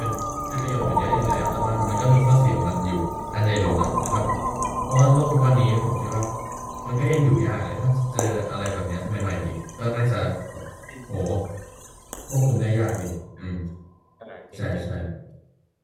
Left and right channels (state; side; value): identical; both; correlation 1.00